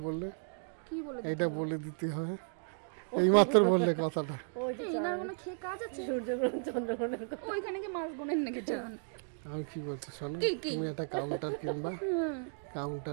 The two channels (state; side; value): silent; left; 55 dB below the other